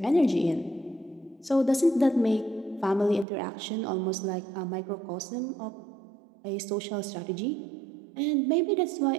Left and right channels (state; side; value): drops out; left; at 3.2 s